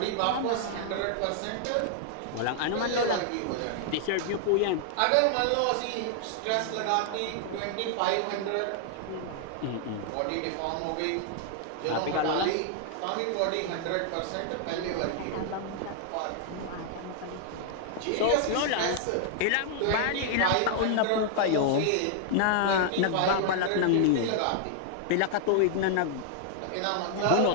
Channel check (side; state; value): both; different; correlation 0.00